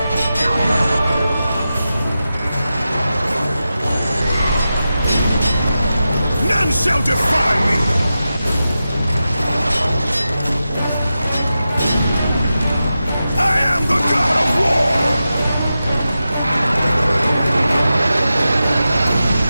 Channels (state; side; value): inverted; both; correlation -0.92